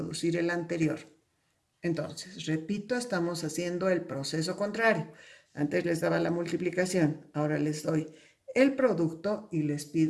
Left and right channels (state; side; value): identical; both; correlation 1.00